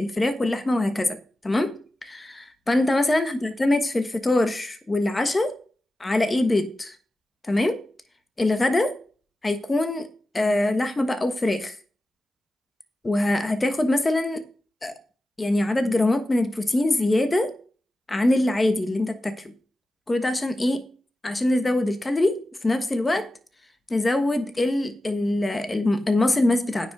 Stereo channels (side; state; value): both; normal; correlation 0.93